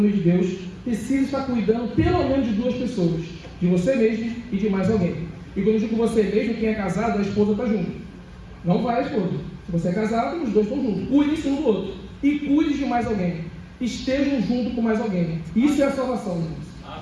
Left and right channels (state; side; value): identical; both; correlation 1.00